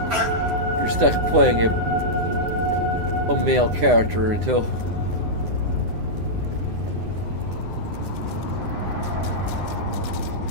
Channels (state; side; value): late; left; 9.8 ms